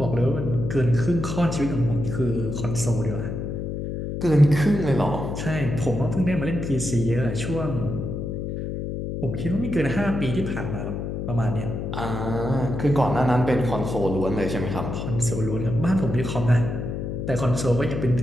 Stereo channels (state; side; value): noise; left; hum, 4 dB below the sound